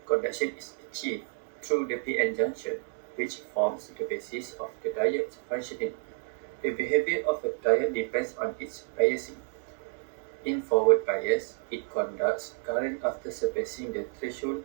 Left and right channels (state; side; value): silent; left; 58 dB below the other